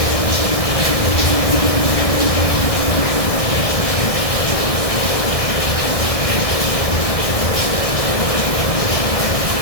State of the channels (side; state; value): right; late; 1.6 ms